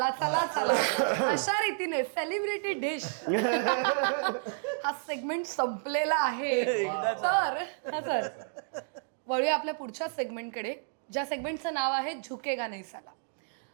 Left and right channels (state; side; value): silent; left; digital silence